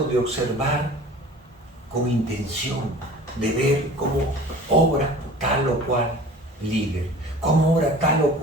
de observar con intención, de ver cómo obra tal o cual líder, cómo obra tal o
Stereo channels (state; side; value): normal; both; correlation 0.43